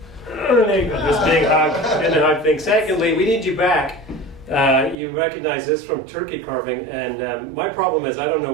there you go, this big hug and the hug thing. Secondly, we need you back. You recognize this from turkey carving, and my problem is I don't know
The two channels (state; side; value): drops out; left; at 5.0 s